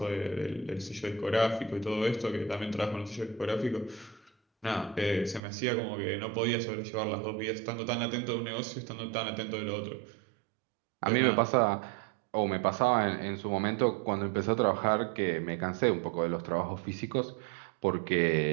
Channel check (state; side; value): drops out; left; at 5.4 s